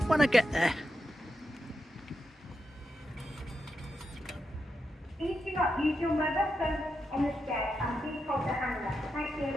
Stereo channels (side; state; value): both; normal; correlation 0.86